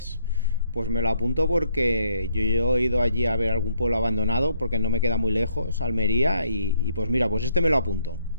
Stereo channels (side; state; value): both; inverted; correlation -0.71